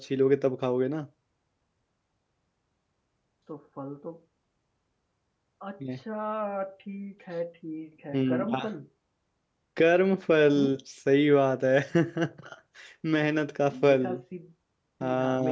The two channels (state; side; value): identical; both; correlation 1.00